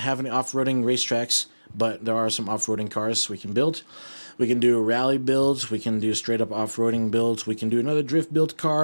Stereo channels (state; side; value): inverted; both; correlation -1.00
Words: any off-roading racetracks, but there are some off-roading cars we can build. We can do rally builds, we can do straight-up off-roading builds, we can do another drift build